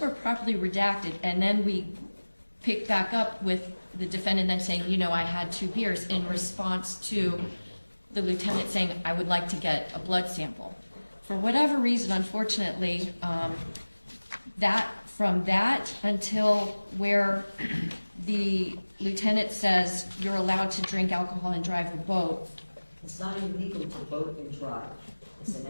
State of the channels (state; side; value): inverted; both; correlation -1.00